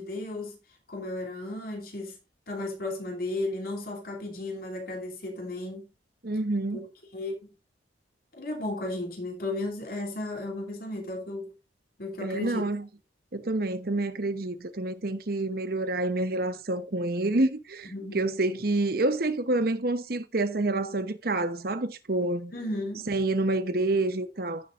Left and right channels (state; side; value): normal; both; correlation 0.42